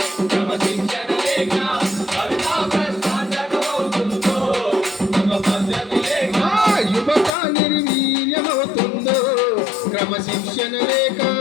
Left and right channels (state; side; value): drops out; right; at 7.4 s